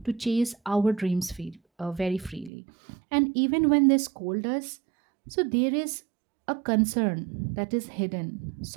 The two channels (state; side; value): drops out; left; at 2.5 s